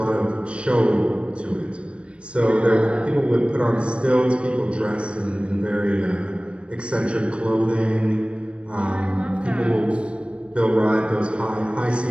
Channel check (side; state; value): left; late; 0.059 ms